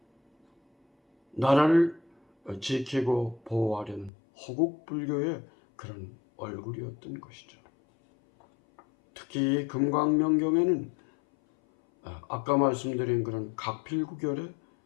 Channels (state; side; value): drops out; right; at 4.1 s